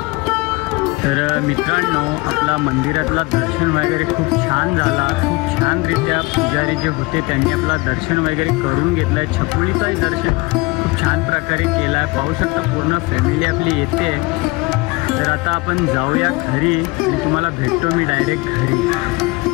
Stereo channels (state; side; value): quieter; right; 24.6 dB